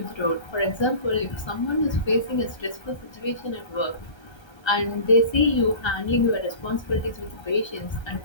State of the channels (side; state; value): right; late; 1.3 ms